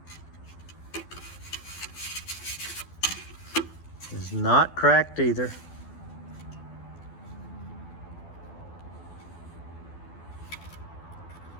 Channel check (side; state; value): right; late; 12 ms